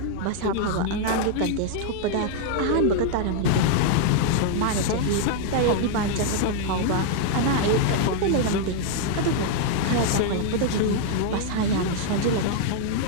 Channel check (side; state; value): both; different; correlation 0.00